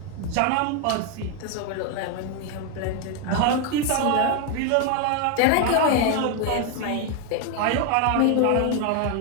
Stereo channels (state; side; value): different; both; correlation 0.01